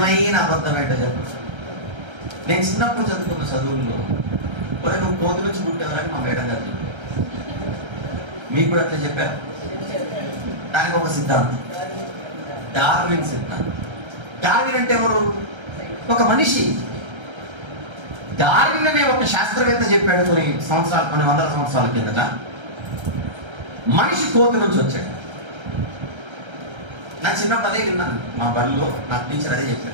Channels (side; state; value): left; late; 1.3 ms